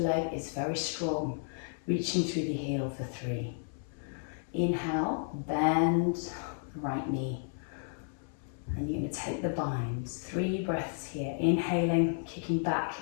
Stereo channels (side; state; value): right; silent; 56 dB below the other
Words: is very strong, reaching through the heel for 3. Inhale, bend the right knee, and you're going to take the binds. 3 breaths here, inhaling, kicking back